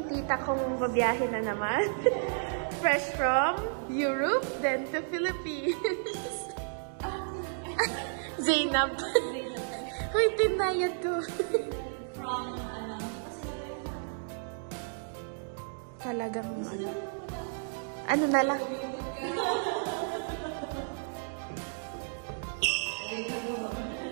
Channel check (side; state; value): left; silent; digital silence